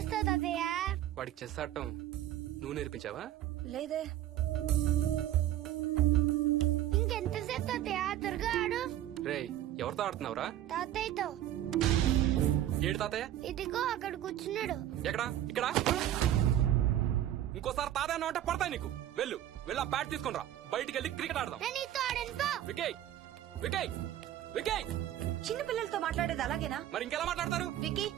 తాతయ్య? వాడికి చెస్ ఆడటం నువ్వు నేర్పించావా? లేదే. ఇంకెంతసేపు తాతయ్య? త్వరగా ఆడు. రేయ్, ఎవరితో ఆడుతున్నావురా? తాతయ్యతో. ఏడు తాతయ్య? ఇదిగో అక్కడ కూర్చున్నాడు. ఎక్కడా? ఇక్కడ. ఇంకోసారి తాతయ్య అంటే పడతాయి నీకు. వెళ్ళు వెళ్ళి ఆ బ్యాట్ తీసుకుని రా, బయటికి వెళ్ళి క్రికెట్ ఆడదాం. నేను నీతో ఆడను పో. వికయ్ వికయ్ వికయ్. చిన్న పిల్లలతో మాట్లాడేది అలాగేనా? మరి ఇంకెలా మాట్లాడతారు? Wiki,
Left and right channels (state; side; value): quieter; left; 12.4 dB